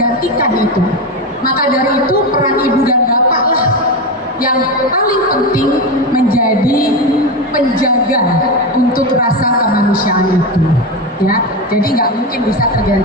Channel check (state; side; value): normal; both; correlation 0.16